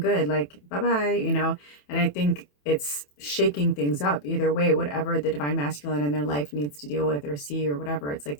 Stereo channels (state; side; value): late; right; 27 ms